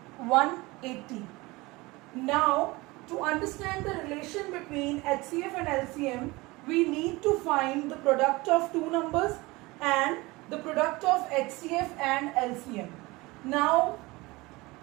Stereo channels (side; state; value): left; quieter; 22.4 dB